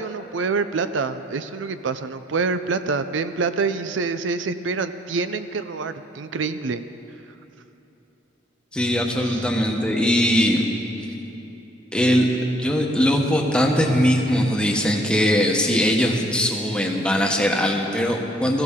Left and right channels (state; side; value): normal; both; correlation 0.63